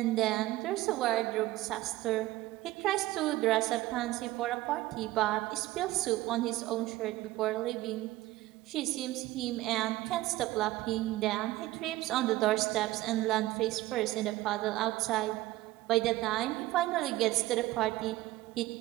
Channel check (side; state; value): left; quieter; 17.1 dB